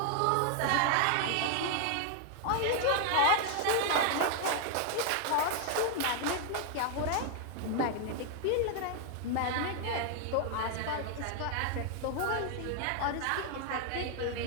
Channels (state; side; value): different; both; correlation 0.00